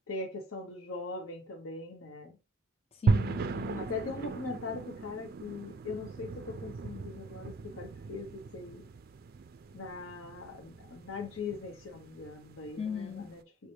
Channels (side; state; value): both; normal; correlation 0.60